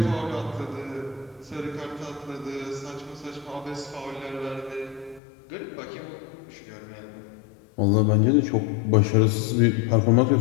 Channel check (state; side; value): drops out; right; at 5.2 s